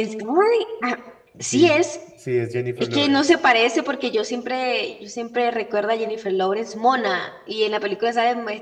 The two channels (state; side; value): identical; both; correlation 1.00